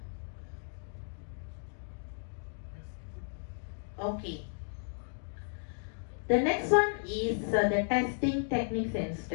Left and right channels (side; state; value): right; silent; digital silence